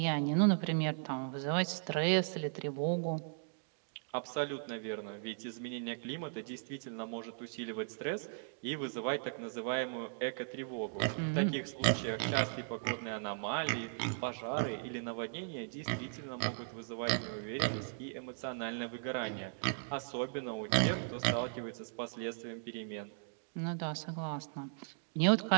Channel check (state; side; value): silent; left; digital silence